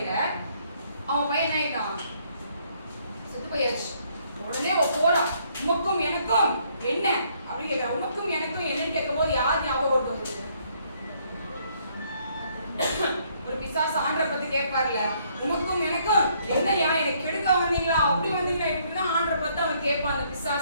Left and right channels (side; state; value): both; inverted; correlation -0.67